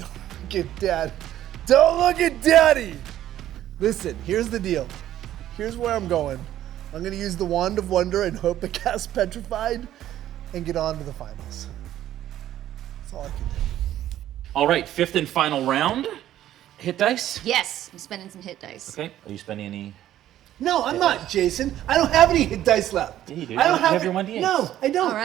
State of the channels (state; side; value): quieter; left; 12.5 dB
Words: look at Dad. Don't look at Daddy. Listen, here's the deal. Here's where I'm going. I'm gonna use the Wand of Wonder and hope to cast Petrified, and get on to the finals. That's all I can do. All right, 5th and final round. Hit dice. Yes, I'm spending some hit dice. Okay. Are you spending any? No, I'm not, Jason. I don't have any hit dice left. Yeah, you do. I don't You have it- your 1d8s. No, I don't. All